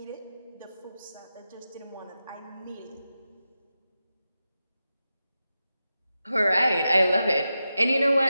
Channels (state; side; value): inverted; both; correlation -0.91